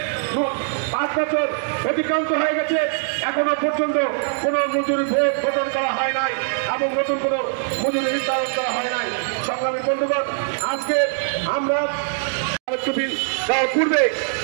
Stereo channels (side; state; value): left; silent; digital silence